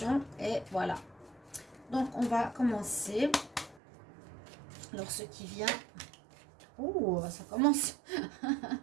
et voilà. Donc on va commencer. Alors ce qui vient... Oh, ça commence.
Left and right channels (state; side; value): drops out; left; at 3.8 s